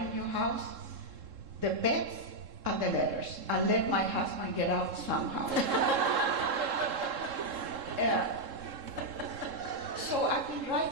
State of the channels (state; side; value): late; left; 3.7 ms